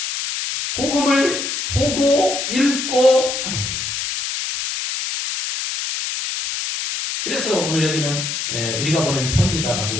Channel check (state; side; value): noise; left; hiss, 3 dB below the sound